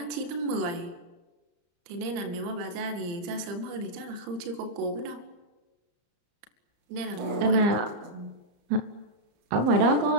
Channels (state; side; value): late; left; 34 ms